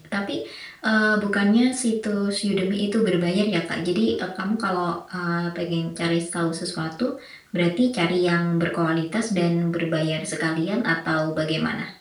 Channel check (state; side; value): identical; both; correlation 1.00